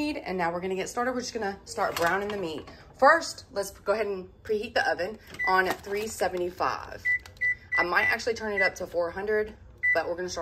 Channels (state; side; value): identical; both; correlation 1.00